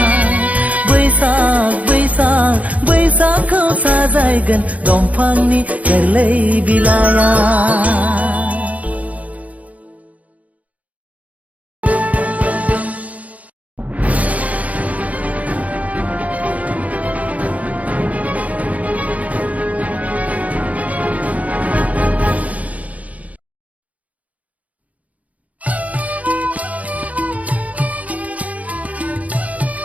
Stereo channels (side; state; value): left; late; 0.070 ms